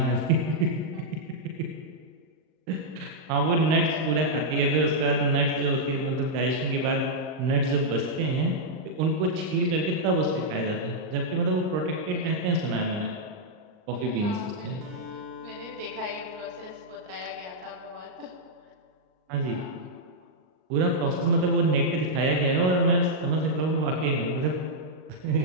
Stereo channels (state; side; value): late; left; 39 ms